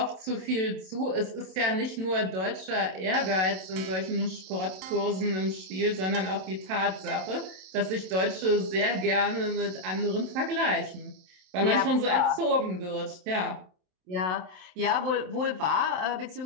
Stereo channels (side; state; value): left; late; 27 ms